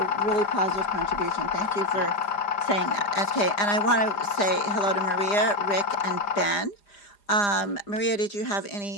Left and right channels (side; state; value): right; late; 4.9 ms